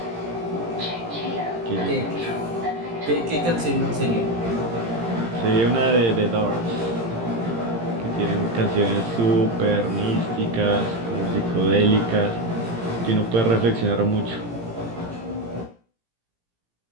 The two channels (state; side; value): late; left; 18 ms